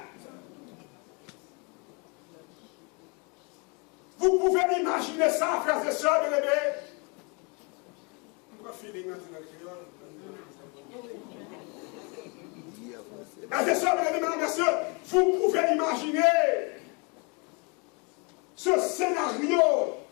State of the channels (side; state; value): right; quieter; 32.0 dB